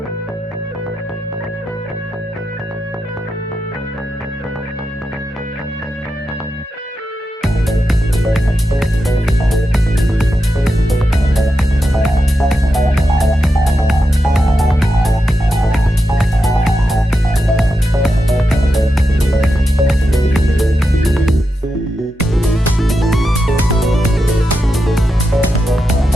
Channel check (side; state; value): both; normal; correlation 0.87